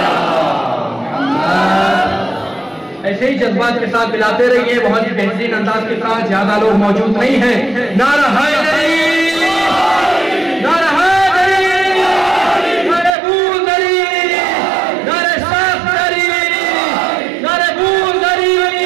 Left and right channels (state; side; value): drops out; left; at 13.1 s